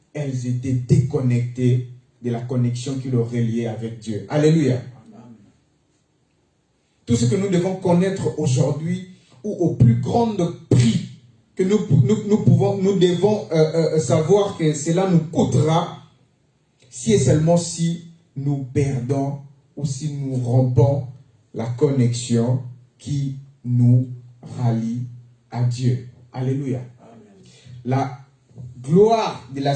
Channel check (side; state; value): both; identical; correlation 1.00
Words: elles étaient déconnectées de la connexion qui les reliait avec Dieu. Alléluia. Tout ce que nous devons connaître aujourd'hui, ou au plus grand prix que nous devons savoir que cela nous coûtera, si et seulement si nous perdons ou si nous rompons la connexion qui nous rallie à Dieu. Alléluia. La gloire de